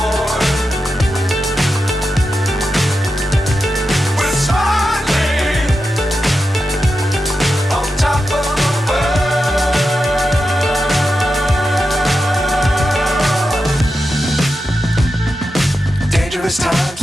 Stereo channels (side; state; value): both; normal; correlation 0.89